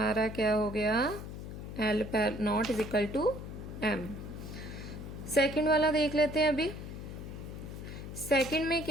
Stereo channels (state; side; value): noise; left; hum, 9 dB below the sound